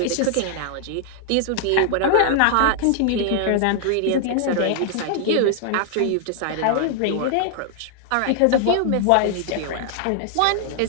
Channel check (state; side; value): different; both; correlation -0.01